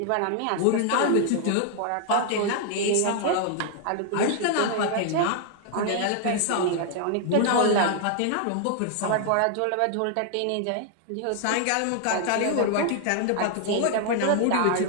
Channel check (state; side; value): different; both; correlation 0.00